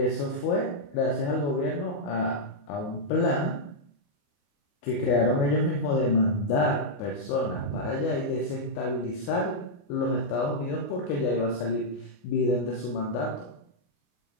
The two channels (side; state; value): right; late; 28 ms